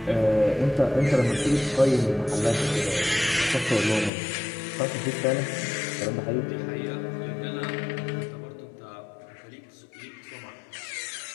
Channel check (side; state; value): right; drops out; at 4.1 s